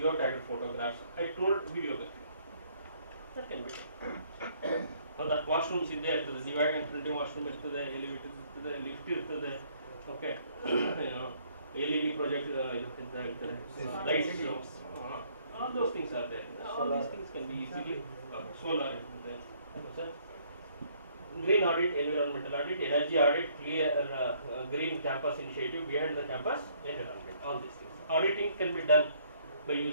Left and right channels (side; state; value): both; inverted; correlation -0.64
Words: photographs. I told video that can be done. ಹೌದಾ, washrooms ಇದ್ದೇ ಇರ್ತದೆ, divide and printing washroom ಇರ್ತದೆ, elevator ಇರ್ತದೆ, lift ಇರ್ತದೆ, okay, LED project ಅಂತ ಹೇಳ್ತಾರೆ, lights, all those things are there. All these things can be easily solar ಇರ್ತದೆ, green audit, environmental audit, energy audit, clear green campus initiative behind the campus environment, all these things. Auditing can be done by